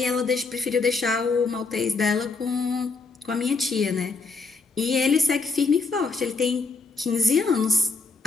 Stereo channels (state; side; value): quieter; right; 4.2 dB